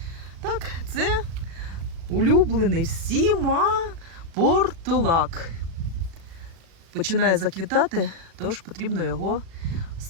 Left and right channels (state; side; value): late; left; 36 ms